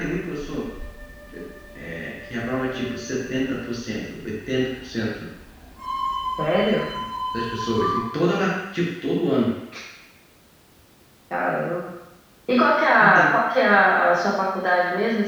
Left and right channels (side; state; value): both; identical; correlation 1.00